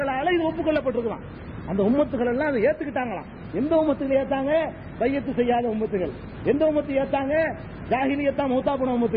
இது ஒப்புக்கொள்ளப்பட்டிருக்கலாம். அந்த உம்மத்துகள் எல்லாம் அதை ஏத்துக்கிட்டாங்களாம். எந்த உம்மத்துகள் ஏத்தாங்க? பையத்து செய்யாத உம்மத்துகள். எந்த உம்மத்து ஏத்தாங்க? ஜாஹிலியத்தா மௌத்தா போன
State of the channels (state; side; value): identical; both; correlation 1.00